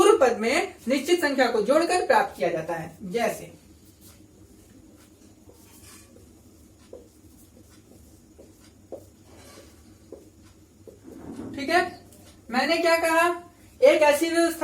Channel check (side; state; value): both; identical; correlation 1.00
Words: पद में निश्चित संख्या को जोड़कर प्राप्त किया जाता है। जैसे ठीक है, मैंने क्या कहा, एक ऐसी